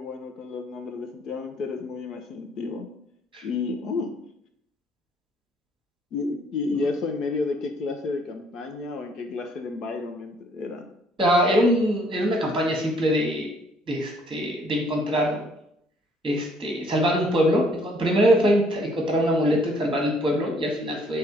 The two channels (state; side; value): normal; both; correlation 0.63